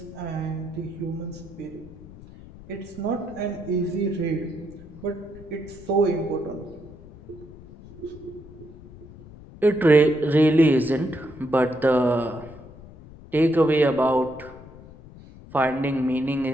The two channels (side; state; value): left; noise; rumble, 19 dB below the sound